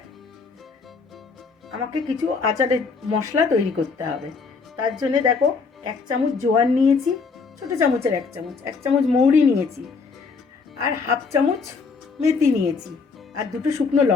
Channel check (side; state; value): right; quieter; 4.8 dB